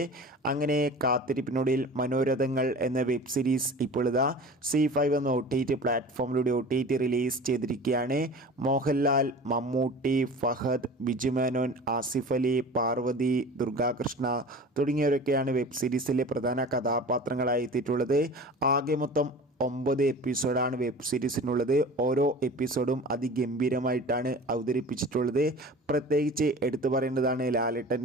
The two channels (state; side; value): normal; both; correlation 0.38